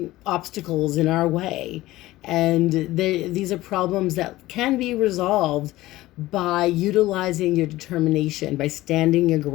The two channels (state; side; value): quieter; right; 17.2 dB